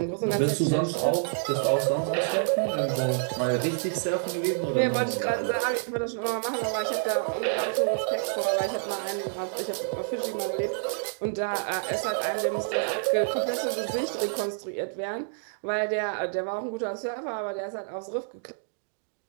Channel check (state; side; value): silent; left; digital silence